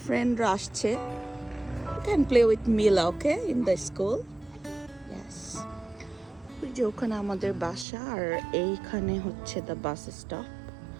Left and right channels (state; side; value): drops out; left; at 7.9 s